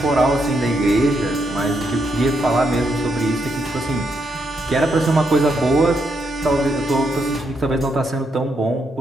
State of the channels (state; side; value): normal; both; correlation 0.79